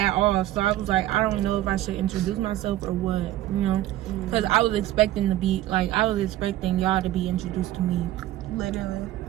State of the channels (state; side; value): quieter; left; 14.3 dB